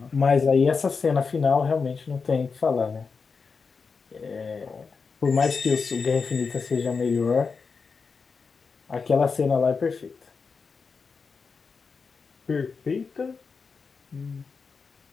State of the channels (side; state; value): right; quieter; 5.1 dB